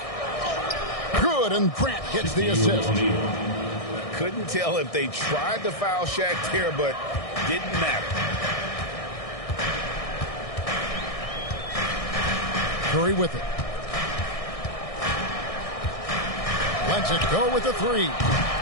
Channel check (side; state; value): right; late; 1.6 ms